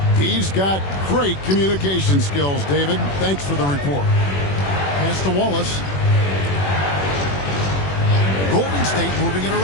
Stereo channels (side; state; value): right; late; 21 ms